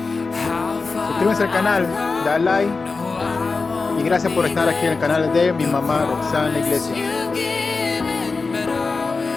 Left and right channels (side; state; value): right; quieter; 4.2 dB